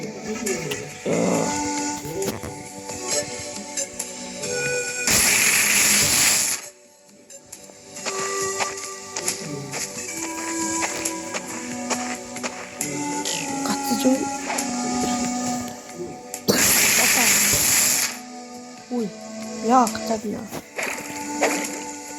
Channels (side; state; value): both; identical; correlation 1.00